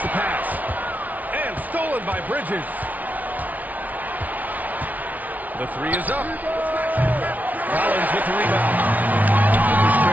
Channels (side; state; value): left; late; 0.075 ms